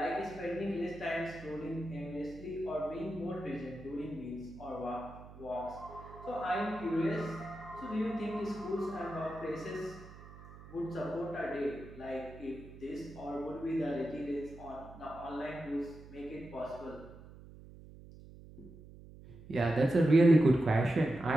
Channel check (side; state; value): right; noise; hum, 17 dB below the sound